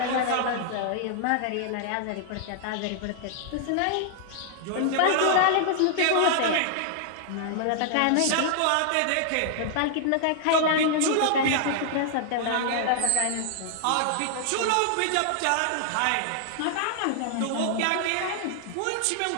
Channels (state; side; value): different; both; correlation -0.01